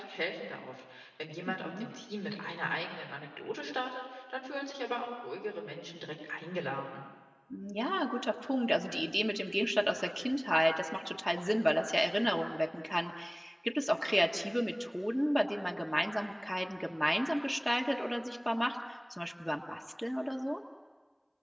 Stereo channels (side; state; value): both; identical; correlation 1.00